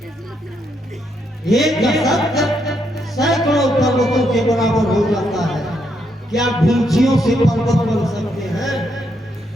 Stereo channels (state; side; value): normal; both; correlation 0.77